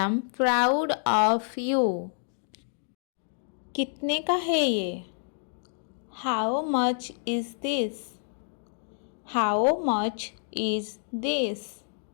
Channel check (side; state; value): right; silent; digital silence